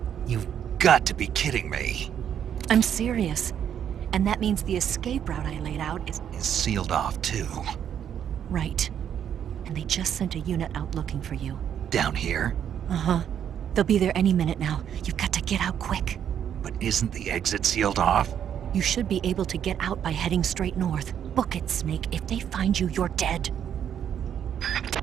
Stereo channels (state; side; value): quieter; left; 9.1 dB